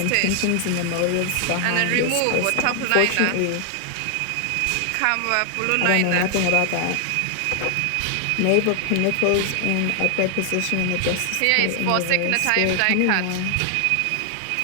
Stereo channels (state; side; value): different; both; correlation 0.00